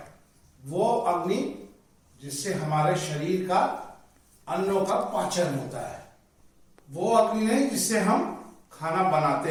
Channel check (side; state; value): both; identical; correlation 1.00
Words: वो अग्नि जिससे हमारे शरीर का अन्नों का पाचन होता है। वो अग्नि नहीं जिससे हम खाना